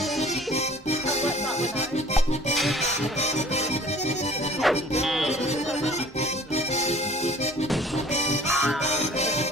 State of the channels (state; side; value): normal; both; correlation 0.50